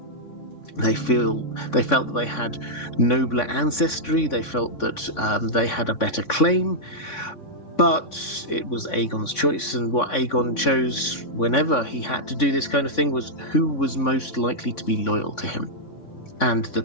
They felt that they had nobler ancestry. They felt that they had a better claim. But it was Aegon's choice, and what Aegon chose whenever he had to do this kind of thing was who was most likely to be loyal to him. And the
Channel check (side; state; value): right; late; 3.5 ms